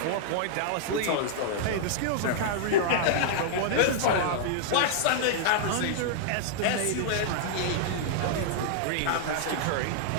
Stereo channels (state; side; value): different; both; correlation -0.01